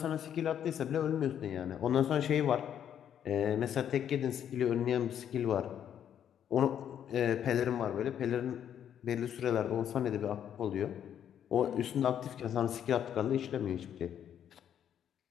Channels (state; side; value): quieter; right; 9.5 dB